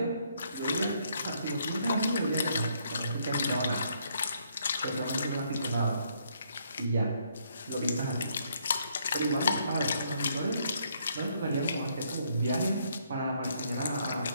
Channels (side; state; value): both; inverted; correlation -0.70